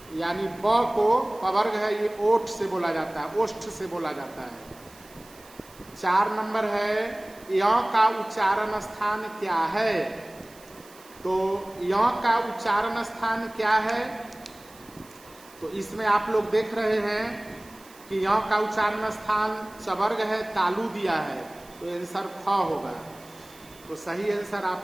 यानी ब को पवर्ग है, ये ओठ से बोला जाता है, ओष्ठ से बोला जाता है। 4 नंबर है य का उच्चारण स्थान क्या है? तो य का उच्चारण स्थान क्या है? तो इसमें आप लोग देख रहे हैं कि य का उच्चारण स्थान चवर्ग है, तालु दिया है, तो आंसर ख होगा। तो सही आंसर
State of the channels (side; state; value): right; noise; hiss, 23 dB below the sound